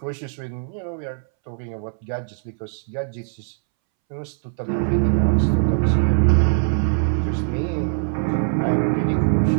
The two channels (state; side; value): silent; left; 64 dB below the other